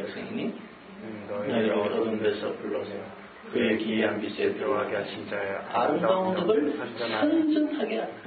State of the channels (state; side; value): identical; both; correlation 1.00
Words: 너희를 어두운 데서 불러서 그의 기이한 빛에 들어가게 하신 자의 아름다운 덕을 선전하게 하라.